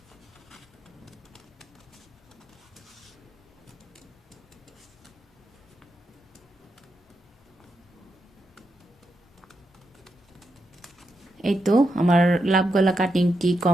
এই তো আমার লাভ গলা কাটিংটি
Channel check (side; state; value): both; normal; correlation 0.84